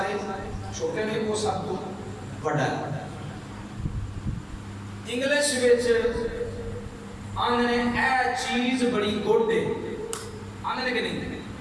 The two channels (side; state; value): both; identical; correlation 1.00